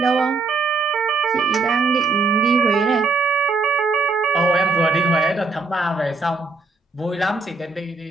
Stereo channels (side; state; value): left; quieter; 4.0 dB